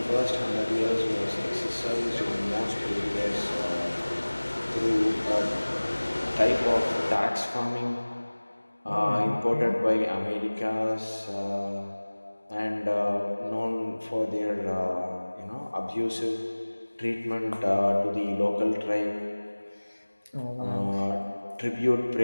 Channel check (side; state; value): both; inverted; correlation -1.00